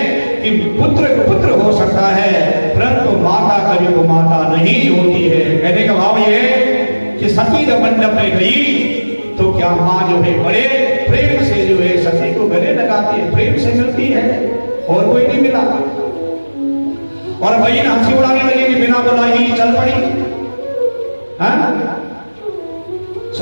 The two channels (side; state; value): both; inverted; correlation -1.00